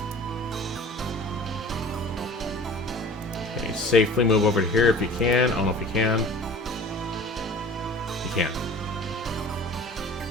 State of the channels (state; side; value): normal; both; correlation 0.43